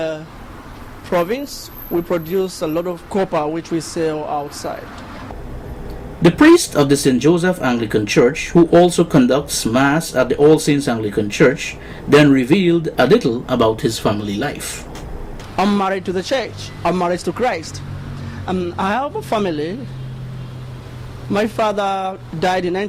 province. We produce a lot of copper which we sell outside. The priest of the St. Joseph Anglican Church, who also conducts Mass at the All Saints Anglican Church, then revealed a little about his family life. I'm married to the church. I'm married to Christ. I have a family. My father died in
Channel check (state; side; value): identical; both; correlation 1.00